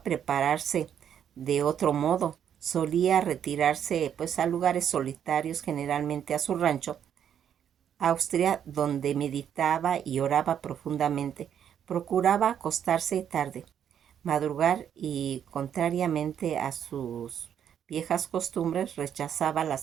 prepararse de otro modo. Solía retirarse pues a lugares solitarios, generalmente a su rancho, Austria, donde meditaba y oraba profundamente. Procuraba acostarse tarde, madrugar, y, contrariamente a sus viejas costumbres, rechazaba la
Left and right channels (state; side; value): quieter; left; 9.0 dB